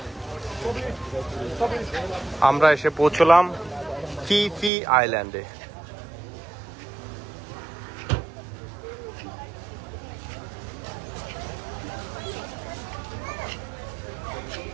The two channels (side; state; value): left; drops out; at 4.7 s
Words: আমরা এসে পৌঁছলাম ফিফি আইল্যান্ডে।